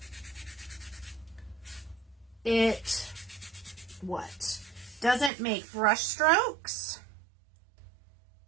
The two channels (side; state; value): left; drops out; at 5.3 s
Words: It doesn't make brush strokes.